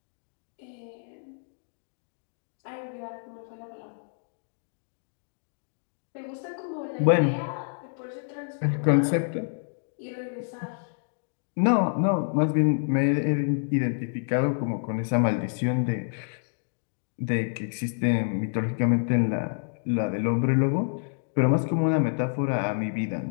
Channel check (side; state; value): right; silent; digital silence